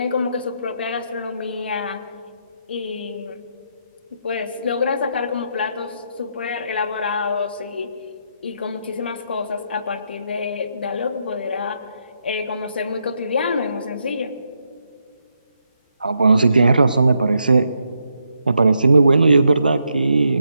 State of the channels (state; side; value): inverted; both; correlation -0.79